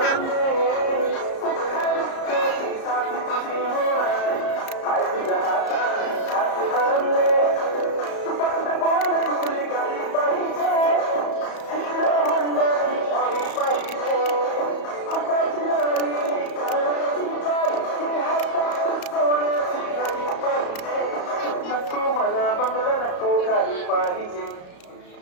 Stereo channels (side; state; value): right; late; 34 ms